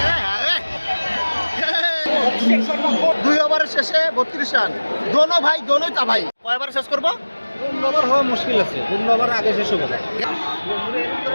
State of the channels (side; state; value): both; inverted; correlation -1.00